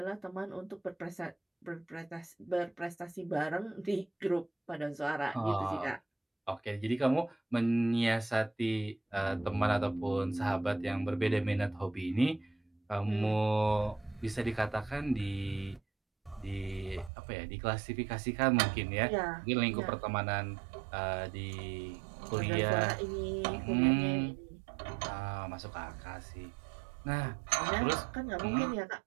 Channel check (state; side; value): drops out; left; at 17.1 s